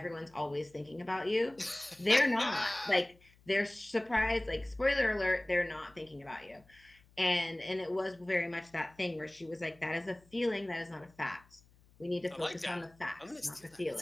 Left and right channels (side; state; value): left; noise; hum, 29 dB below the sound